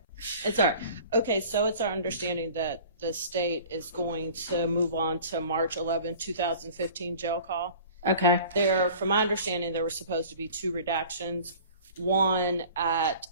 It's all right. Okay, so it's our understanding that the state is going to move on to March 11, 2015 jail call. Okay. From my understanding, there were supposed to be 2 redactions. One at...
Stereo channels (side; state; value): both; inverted; correlation -0.45